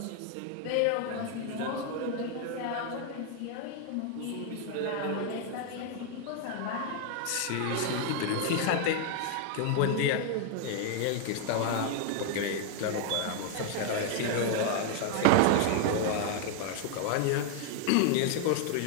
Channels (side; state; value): both; different; correlation 0.00